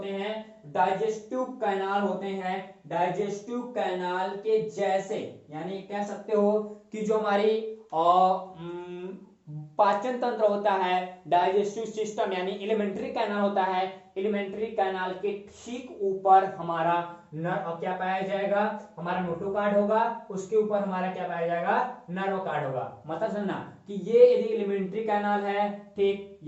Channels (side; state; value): both; identical; correlation 1.00